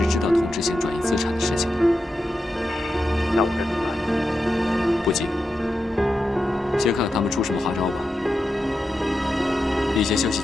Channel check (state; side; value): normal; both; correlation 0.89